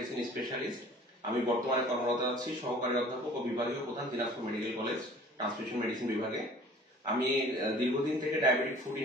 specialist. আমি বর্তমানে কর্মরত আছি সহকারী অধ্যাপক ও বিভাগীয় প্রধান, Dinajpur medical college transmission medicine বিভাগে। আমি দীর্ঘদিন থেকে ডায়াবেটিক ফুড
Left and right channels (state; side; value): normal; both; correlation 0.49